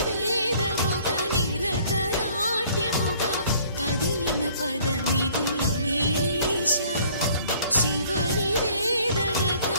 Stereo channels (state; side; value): inverted; both; correlation -0.57